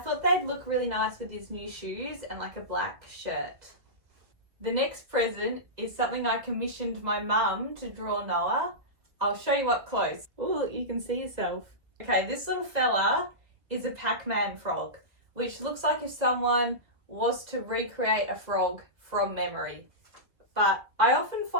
they'd look really nice with his new shoes and like a black shirt. The next present is something I commissioned my mum to draw Noah. I'll show you up close. Oh, look, you can see yourself. Okay, this little fella is a Pac-Man frog, which looks like if someone was to recreate a frog from memory. But I often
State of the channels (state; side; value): late; left; 1.8 ms